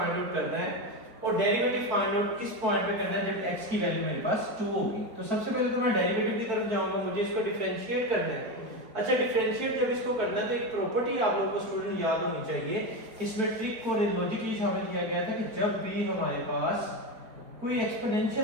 आउट करना है और डेरिवेटिव फाइंड आउट किस पॉइंट पे करना है जब x की वैल्यू मेरे पास 2 होगी। तो सबसे पहले तो मैं डेरिवेटिव की तरफ जाऊंगा, मुझे इसको डिफरेंशिएट करना है। अच्छा, डिफरेंशिएट जब इसको करना है तो एक प्रॉपर्टी आप लोगों को स्टूडेंट याद होनी चाहिए। इसमें ट्रिक को लॉजिकली शामिल किया गया था कि जब भी हमारे पास कोई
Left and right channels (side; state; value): left; late; 4.5 ms